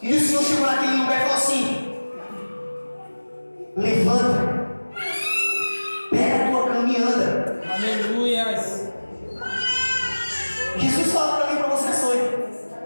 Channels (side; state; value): both; inverted; correlation -1.00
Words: E o Senhor chegou naquele lugar e falou assim: levanta, pega a tua cama e anda. Aleluia. Jesus fala para mim e para você essa noite: